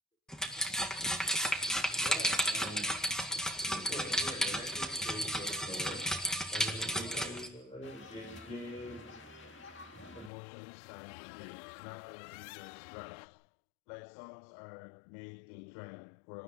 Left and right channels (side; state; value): right; drops out; at 10.3 s